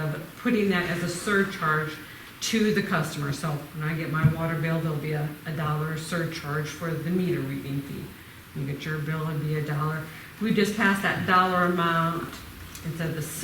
putting that as a surcharge to the customer. So when I get my water bill, there'll be a $1 surcharge for the meter reading fee. You get your bill, it'd be $1. We just passed that dollar amount instead of the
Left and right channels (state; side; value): identical; both; correlation 1.00